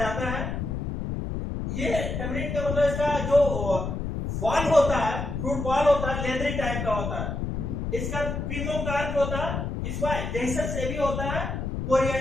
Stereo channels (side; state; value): left; noise; rumble, 3 dB below the sound